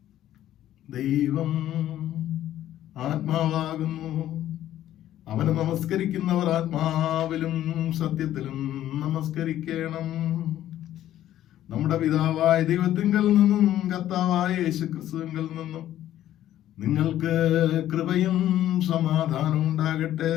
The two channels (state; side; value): quieter; right; 12.6 dB